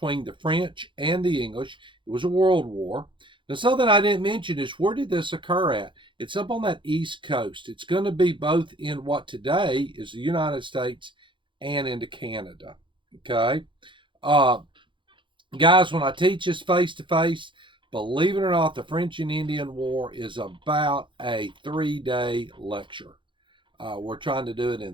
the French and the English. It was a world war. Now, something I didn't mention is where did this occur at? It's up on that East Coast. It's going to be both in what today is the United States and into Canada. Okay? Uh, Guys, when I teach this face to face, believe it or not, the French and Indian War is about a 3-day lecture. We're trying to do it in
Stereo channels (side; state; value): left; late; 0.24 ms